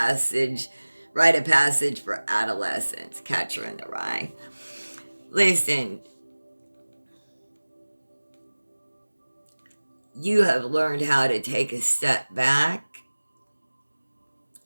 rite of passage for adolescents. Catcher in the Rye. Listen, you have learned how to take a step back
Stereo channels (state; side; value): inverted; both; correlation -1.00